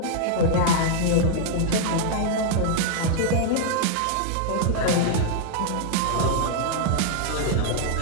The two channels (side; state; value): both; different; correlation -0.01